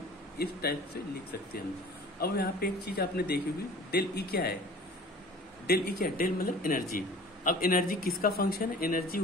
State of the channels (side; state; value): both; normal; correlation 0.44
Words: इस टाइप से लिख सकते हैं हम। अब यहाँ पे एक चीज आपने देखी होगी, डेल ई क्या है, डेल ई क्या है, डेल मतलब एनर्जी। अब एनर्जी किसका फंक्शन है, एनर्जी